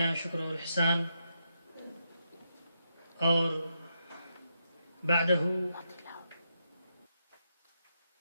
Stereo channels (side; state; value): both; inverted; correlation -0.82